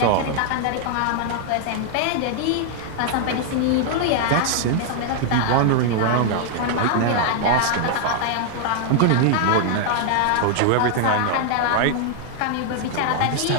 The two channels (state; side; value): different; both; correlation -0.01